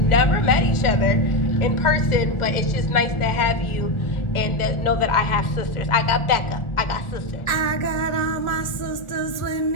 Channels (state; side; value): late; right; 1.4 ms